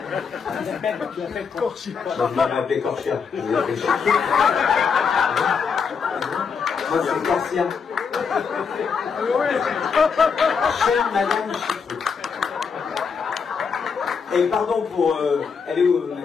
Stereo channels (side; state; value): right; quieter; 5.9 dB